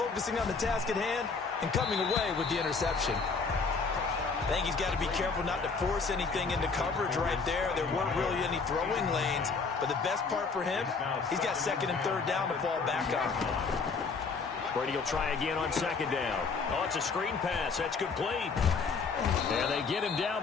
on the task at hand and coming away with the interception. I think he's got to be careful not to force anything into coverage right there. There weren't really any throwing lanes, but the best part for him, he's got 2nd and 3rd down to fall back on. Brady will try again on 2nd down. Oh, it's a screen pass. That's complete. And they get him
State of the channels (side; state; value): right; quieter; 4.7 dB